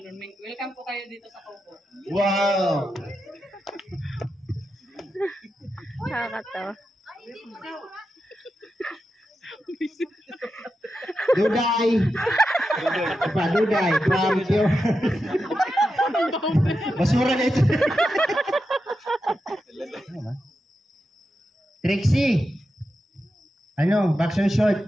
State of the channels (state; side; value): normal; both; correlation 0.89